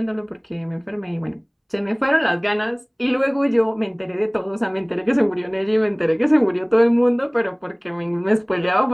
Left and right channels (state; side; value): identical; both; correlation 1.00